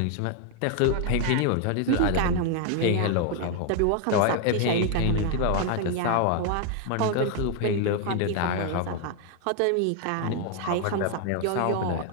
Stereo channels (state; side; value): different; both; correlation 0.00